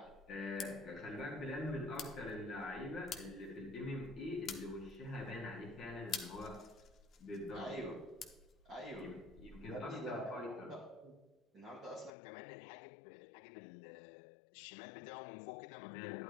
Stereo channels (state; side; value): drops out; right; at 12.1 s